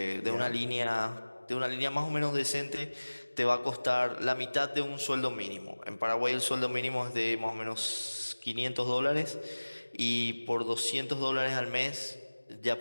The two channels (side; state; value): both; inverted; correlation -1.00